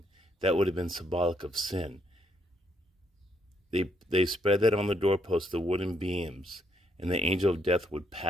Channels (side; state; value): both; normal; correlation 0.73